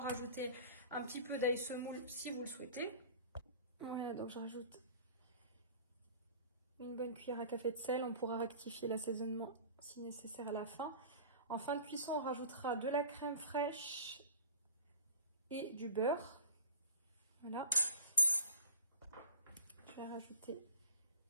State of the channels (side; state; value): both; inverted; correlation -0.42